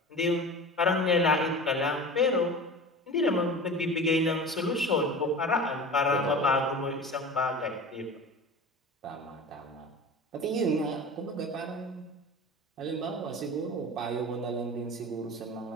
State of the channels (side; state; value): both; normal; correlation 0.34